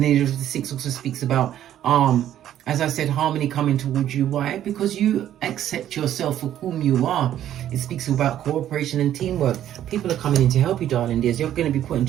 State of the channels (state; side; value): quieter; left; 11.5 dB